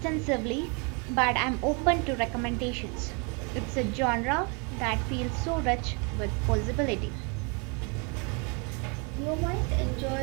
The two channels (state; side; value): quieter; left; 34.0 dB